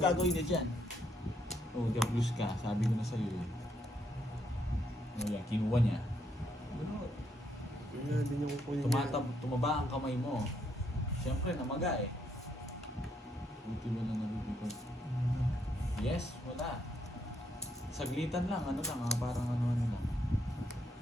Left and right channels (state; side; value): normal; both; correlation 0.75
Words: gagawin niya dyan? Oh, blues ka. Sabi ko na sa'yo eh. Oh, yan, kinuha niya. Wala din yung kukunin niya. Tumaba ang kamay mo. Siyempre, namaga eh. Buti mo na nalulipad. Yes, wala. Saglitan lang, ano lang, parang ano lang.